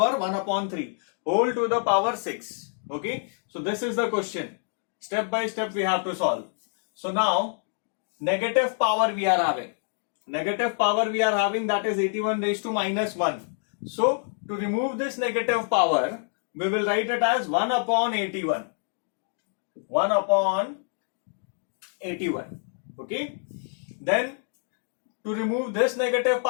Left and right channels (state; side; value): silent; right; digital silence